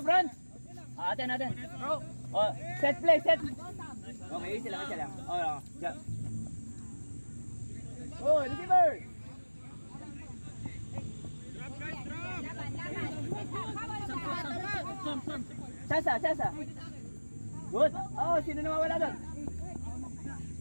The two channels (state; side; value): inverted; both; correlation -1.00